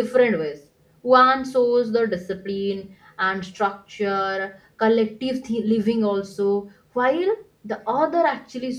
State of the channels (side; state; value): both; identical; correlation 1.00